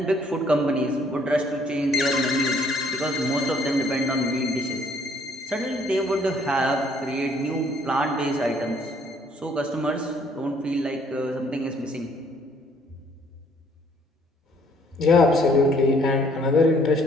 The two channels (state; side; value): normal; both; correlation 0.63